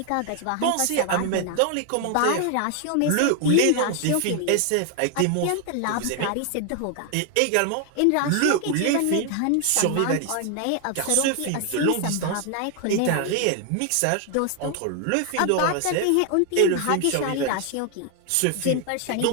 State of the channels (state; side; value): different; both; correlation 0.00